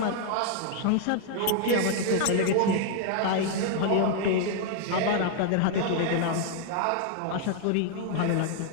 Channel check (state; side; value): different; both; correlation 0.00